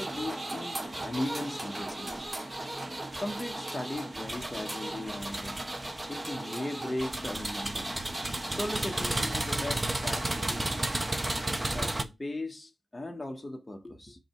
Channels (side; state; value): both; normal; correlation 0.95